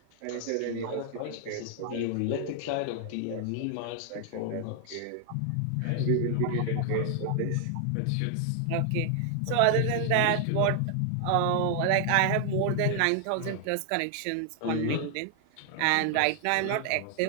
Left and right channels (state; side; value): different; both; correlation 0.00